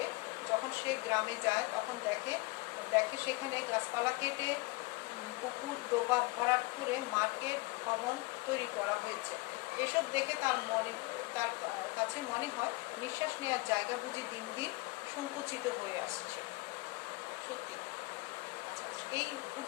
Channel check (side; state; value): right; quieter; 24.2 dB